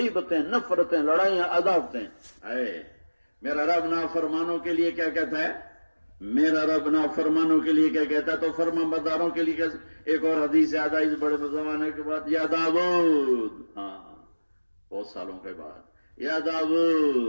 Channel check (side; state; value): both; inverted; correlation -1.00